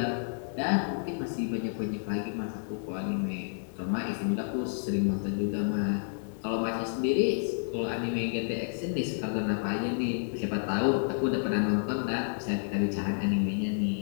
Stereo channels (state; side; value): silent; right; digital silence